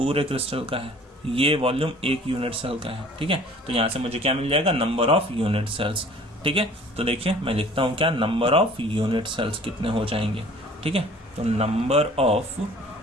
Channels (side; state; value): both; normal; correlation 0.50